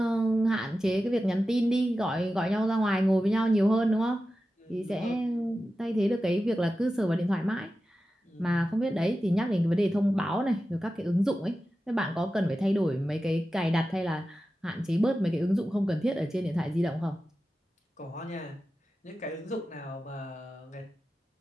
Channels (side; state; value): both; normal; correlation 0.93